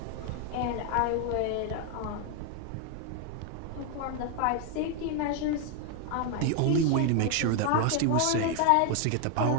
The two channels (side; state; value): both; different; correlation 0.01